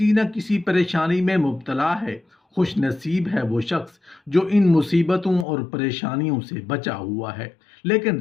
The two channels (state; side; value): drops out; right; at 5.5 s